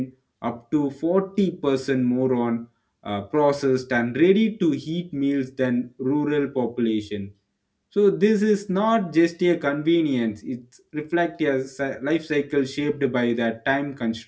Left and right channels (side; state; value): both; identical; correlation 1.00